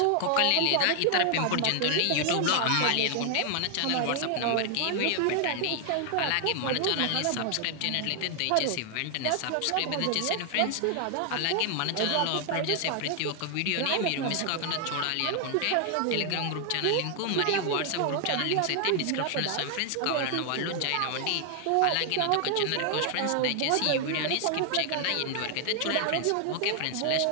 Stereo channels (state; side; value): different; both; correlation 0.00